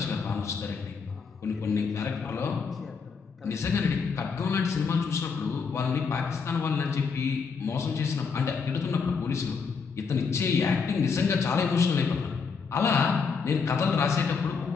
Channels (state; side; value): quieter; right; 5.4 dB